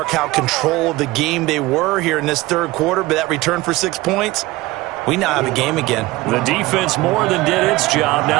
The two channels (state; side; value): quieter; left; 19.8 dB